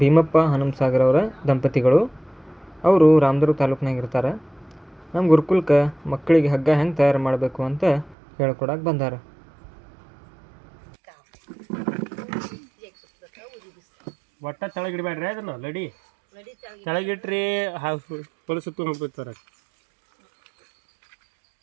ಭೀಮಪ್ಪ ಹನುಮಸಾಗರ್ ಅವರ ದಂಪತಿಗಳು. ಅವರು ರಾಮದುರ್ಗ ತಾಲೂಕಿನಾಗ ಇರ್ತಾರೆ. ನಮ್ಮ ಗುರುಕುಲಕ್ಕೆ ಮಕ್ಕಳಿಗೆ ಹಗ್ಗ ಹೆಂಗೆ ತಯಾರು ಮಾಡಬೇಕು ಅಂತ ಹೇಳ್ಕೊಡಕ್ಕೆ ಬಂದಾರ. ಒಟ್ಟ ತೆಳಗಿಡ್ಬೇಡ್ರಿ ಅದನ್ನ ಲಡಿ, ತೆಳಗಿಟ್ರಿ ಹೊಲಸುತ್ತು ಹೋಗ್ಬಿಡ್ತಾರೆ.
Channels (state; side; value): drops out; left; at 8.2 s